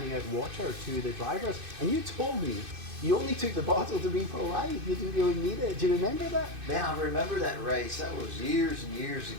out water to the drivers, and you told me you only took the bottle to be polite, you didn't really need it. Do you remember that? Man, I remember that race. That was years and years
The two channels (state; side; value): late; left; 2.5 ms